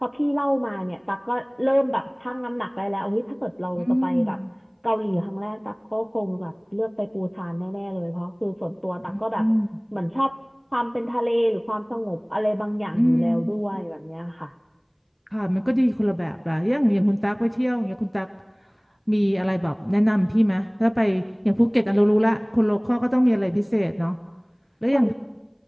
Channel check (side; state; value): both; identical; correlation 1.00